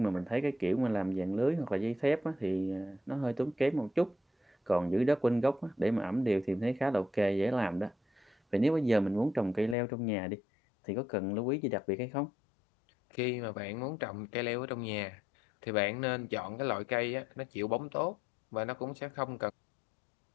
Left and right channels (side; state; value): right; drops out; at 9.8 s